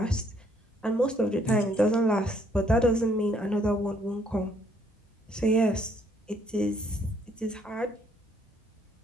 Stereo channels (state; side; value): normal; both; correlation 0.67